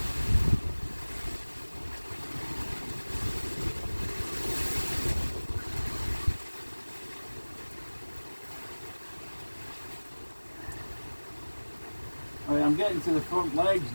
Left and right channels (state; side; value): inverted; both; correlation -1.00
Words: Right, I'm getting to the front legs